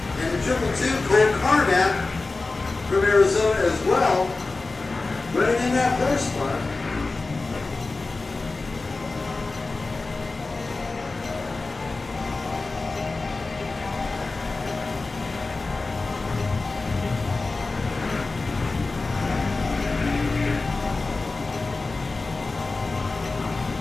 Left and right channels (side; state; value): right; quieter; 3.6 dB